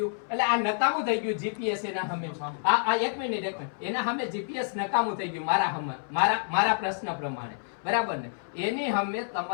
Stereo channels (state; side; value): silent; right; 59 dB below the other